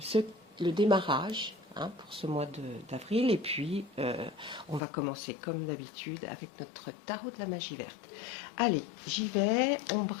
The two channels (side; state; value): right; drops out; at 4.8 s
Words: le démarrage pour ce mois d'avril. Et puis, on va commencer comme d'habitude avec notre tarot de la magie verte. Allez, j'y vais, on